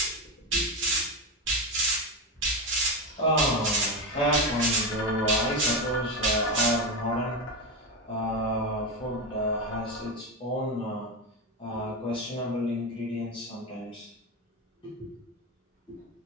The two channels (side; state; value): both; normal; correlation 0.14